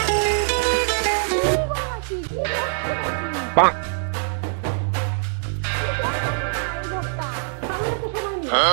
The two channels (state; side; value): silent; left; digital silence